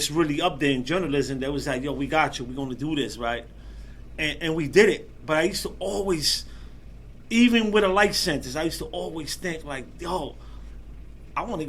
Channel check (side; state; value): both; identical; correlation 1.00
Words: really up there in journalism that was like, yo, we got you. We're gonna do this, right? And we did it. But I used to always, even with a life sentence, I used to always think like, yo, I want to